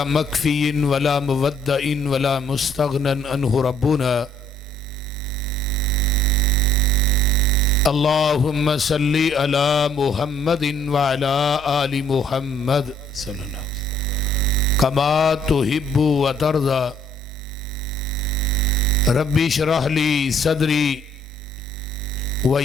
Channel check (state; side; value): normal; both; correlation 0.63